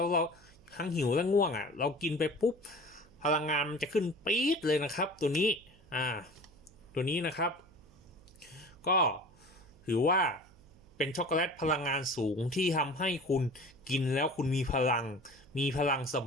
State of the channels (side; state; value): right; noise; hum, 26 dB below the sound